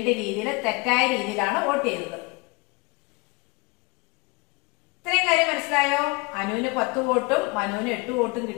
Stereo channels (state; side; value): quieter; right; 26.9 dB